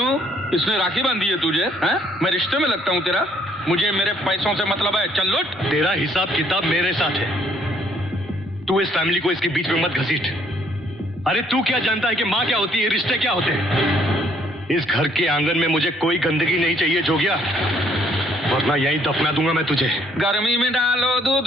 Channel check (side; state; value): both; normal; correlation 0.65